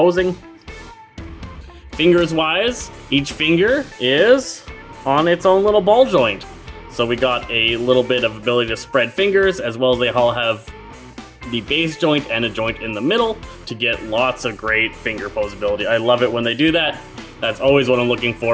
Fingers wise, each finger is on its own little ball joint. So we got a little bit of ability to spread fingers, as well as they all have the base joint and a joint in the middle to get lots of great finger posability. I love it when they do that. That's always what I'm looking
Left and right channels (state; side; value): identical; both; correlation 1.00